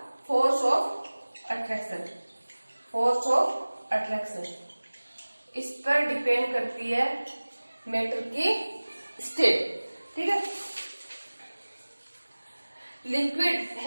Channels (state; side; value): inverted; both; correlation -1.00